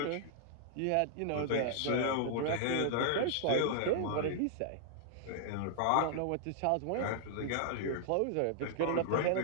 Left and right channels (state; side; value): different; both; correlation -0.01